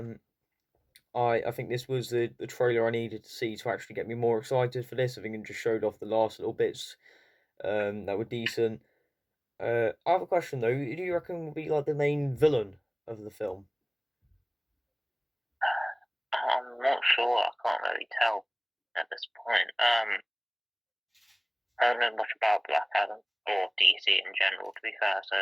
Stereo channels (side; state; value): both; identical; correlation 1.00